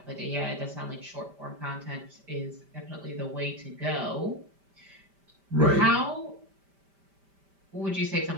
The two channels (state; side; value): late; left; 5.1 ms